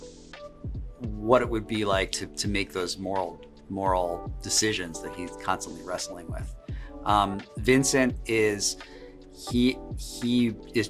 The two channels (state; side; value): identical; both; correlation 1.00